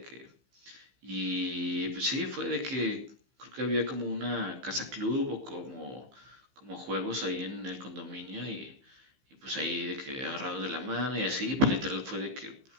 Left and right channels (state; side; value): late; left; 15 ms